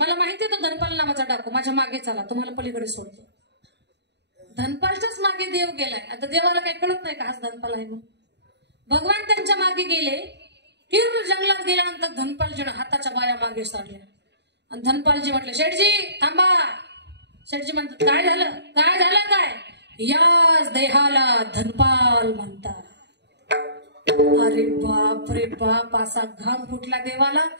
माहिती आहे तो धनपाल नावाचा डाकू. माझ्या मागे चला तुम्हाला पलीकडे सोडतो. धनपालच्याच मागे देव गेलाय. आता देवाला काही कळत नाही का हाच धनपाल आहे म्हणून. भगवान त्यांच्या मागे गेले. तीव्र जंगलात गेल्यानंतर धनपालजीनं हाताच्या बाया मागे सारल्या आणि धनपालजी म्हटले शेठजी थांबा. शेठजी म्हणतात काय झालं काय? याच देहाला धनपाल म्हणतात. अरे बाप रे बाप. असा घाम फुटला देवाला.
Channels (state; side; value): late; left; 0.50 ms